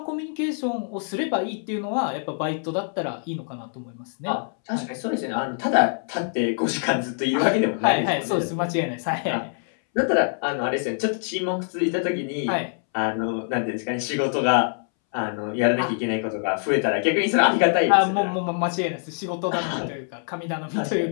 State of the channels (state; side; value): silent; right; 62 dB below the other